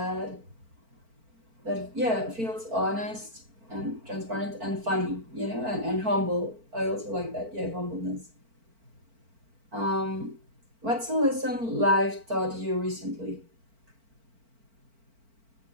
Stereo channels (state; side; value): late; left; 4.4 ms